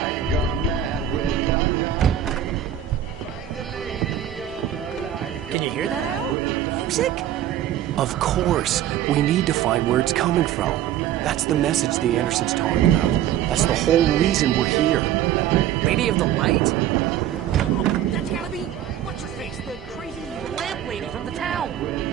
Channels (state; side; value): quieter; left; 11.0 dB